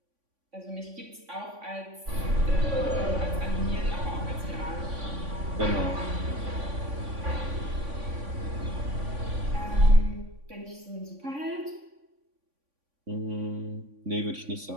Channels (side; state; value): left; late; 3.5 ms